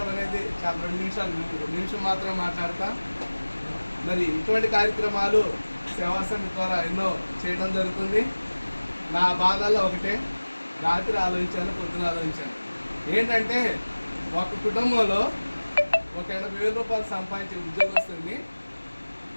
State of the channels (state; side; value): inverted; both; correlation -1.00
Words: అనేది చాలా 2 నిమిషం మాత్రమే మాట్లాడతా. మరి ఇటువంటి కార్యక్రమాలు సేవా సమితి ద్వారా ఎన్నో చేయడం జరుగుతుంది. నా బాధల్లో ఒకటే, రాత్రి ఆలోచించాను, పొద్దున ఆలోచించాను. ఏంటంటే ఒక కుటుంబంలో ఒక 80,000 రూపాయలు సంపాదించే ఉద్యోగస్తుని